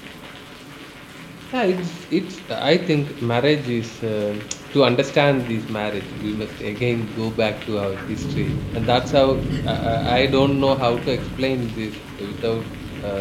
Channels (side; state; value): both; identical; correlation 1.00